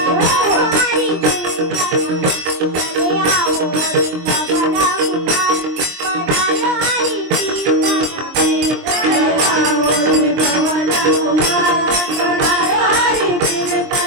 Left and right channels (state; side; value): late; left; 23 ms